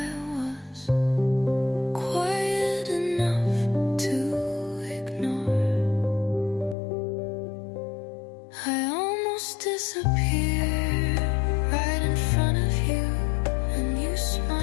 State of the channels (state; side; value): drops out; right; at 6.8 s